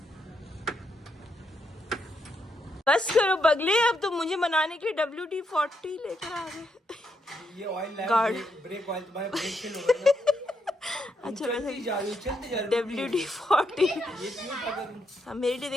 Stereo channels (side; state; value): both; normal; correlation 0.79